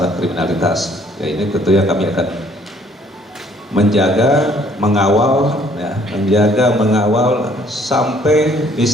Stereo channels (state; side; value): normal; both; correlation 0.61